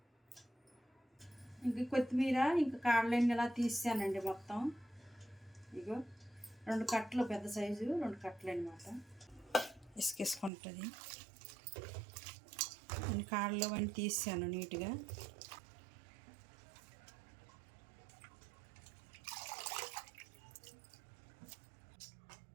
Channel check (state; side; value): drops out; left; at 10.5 s